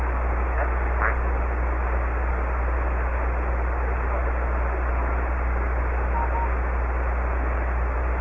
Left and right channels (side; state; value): both; identical; correlation 1.00